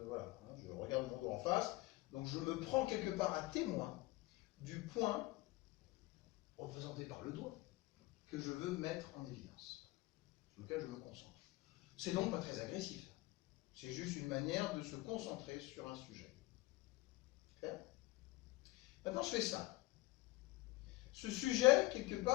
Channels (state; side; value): quieter; right; 20.3 dB